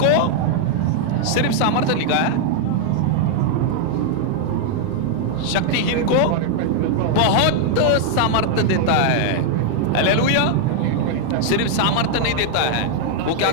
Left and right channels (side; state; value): both; different; correlation 0.00